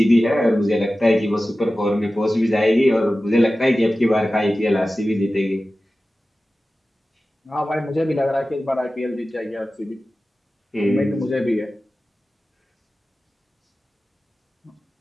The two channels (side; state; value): both; normal; correlation 0.95